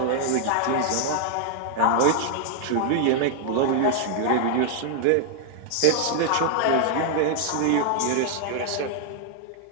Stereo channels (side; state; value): both; different; correlation 0.00